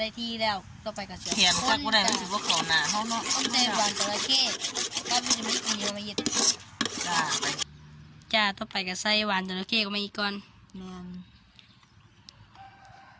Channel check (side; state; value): both; identical; correlation 1.00